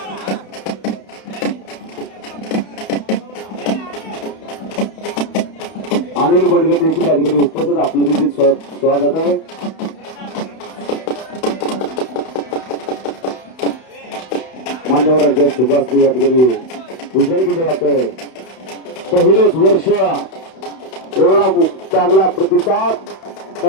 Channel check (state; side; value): late; right; 31 ms